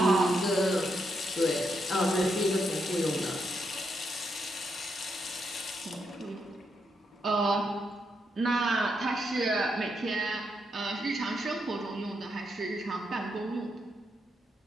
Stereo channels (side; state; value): both; normal; correlation 0.80